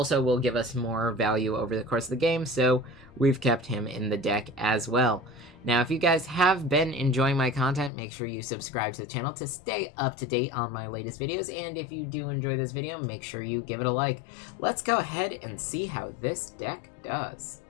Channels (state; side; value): drops out; right; at 7.9 s